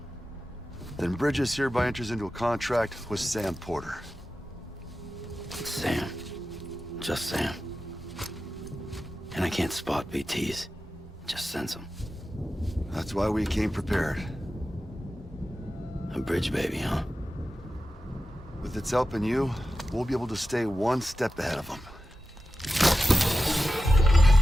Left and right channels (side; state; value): both; normal; correlation 0.93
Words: Then Bridges hereby enters into a contract with Sam Porter. Sam. Just Sam. And I can't spot BTs. Just sense them. That's why we came prepared. A bridge baby, huh? With its help and you, we'll be able to stay one step ahead of them.